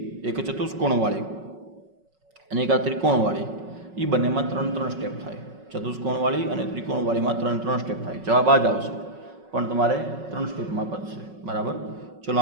એક ચતુષ્કોણવાળી અને એક આ ત્રિકોણવાળી, એ બંનેમાં 3 સ્ટેપ થાય. ચતુષ્કોણવાળી અને ત્રિકોણવાળીમાં 3 સ્ટેપ થાય. જવાબ આ જ આવશે, પણ તમારે 3 સ્ટેપમાં પતશે. બરાબર, ચલો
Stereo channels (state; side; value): late; left; 5.4 ms